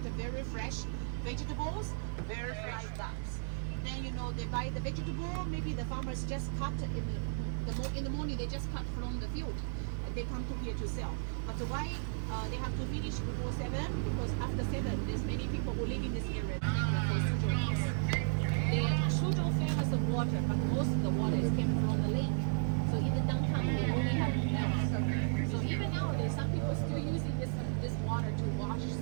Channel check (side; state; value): left; silent; digital silence